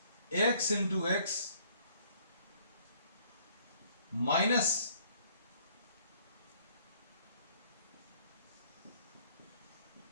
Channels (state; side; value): inverted; both; correlation -0.61